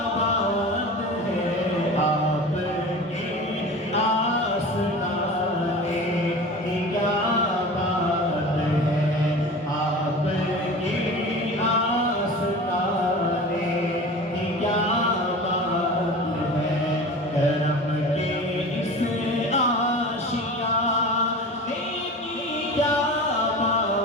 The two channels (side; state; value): both; normal; correlation 0.35